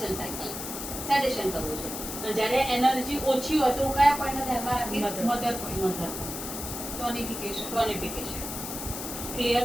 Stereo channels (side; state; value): left; noise; hiss, 7 dB below the sound